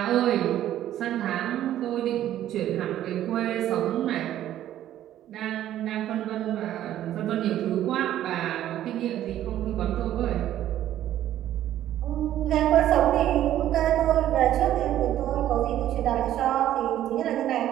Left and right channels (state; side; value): quieter; left; 12.3 dB